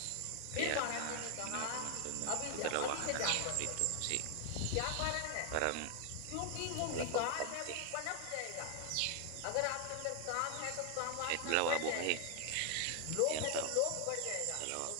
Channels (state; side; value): different; both; correlation 0.00